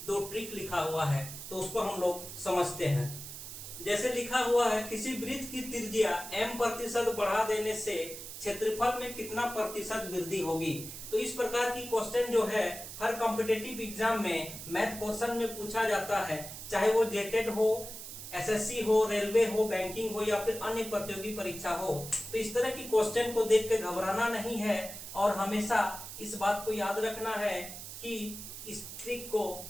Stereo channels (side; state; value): right; noise; hiss, 10 dB below the sound